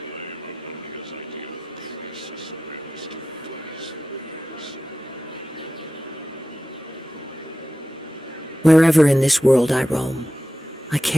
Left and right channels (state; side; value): normal; both; correlation 0.92